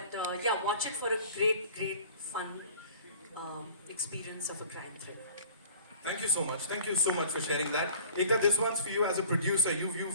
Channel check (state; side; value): inverted; both; correlation -0.46